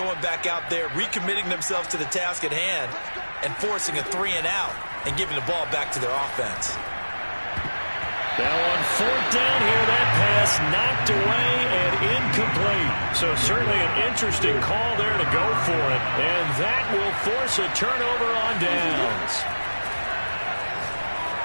back out there, recommitting themselves to the task at hand, and forcing a 3 and out, and giving the ball back to their offense. Now on fourth down here, that pass knocked away and incomplete. So certainly an interesting call there to go for it. And that will force a turnover on downs.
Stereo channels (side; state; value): both; inverted; correlation -1.00